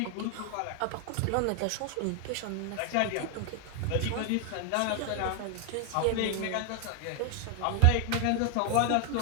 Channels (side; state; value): both; different; correlation 0.00